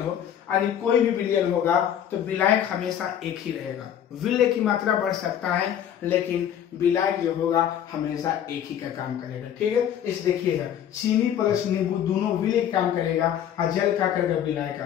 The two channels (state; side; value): quieter; right; 9.8 dB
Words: हो, यानी कोई भी विलयन होगा तो विलायक हमेशा एक ही रहेगा। विलय की मात्रा बढ़ सकता है लेकिन विलायक जो होगा हमेशा एक ही का काम करेगा। ठीक है। इस देखिएगा, चीनी प्लस नींबू दोनों विलय काम करेगा, और जल का करेगा विलाय